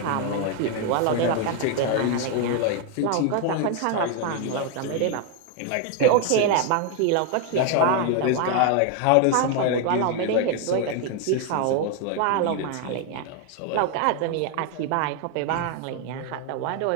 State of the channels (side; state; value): both; different; correlation 0.01